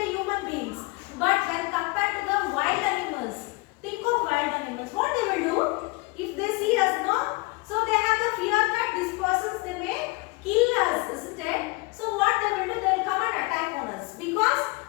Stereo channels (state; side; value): quieter; right; 25.7 dB